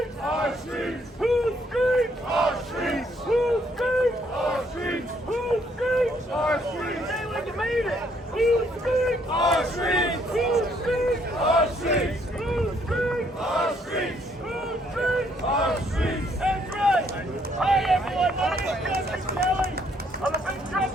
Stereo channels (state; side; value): normal; both; correlation 0.68